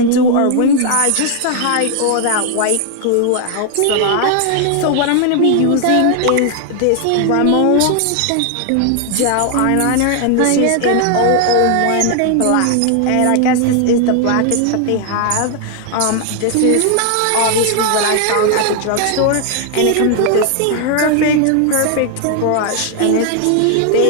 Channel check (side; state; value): both; different; correlation 0.00